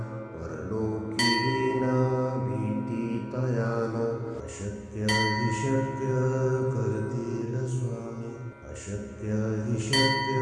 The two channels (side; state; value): both; identical; correlation 1.00